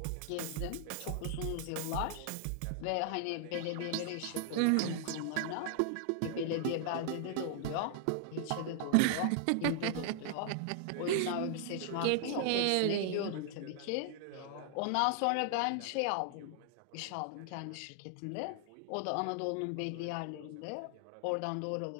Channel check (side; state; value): both; different; correlation 0.00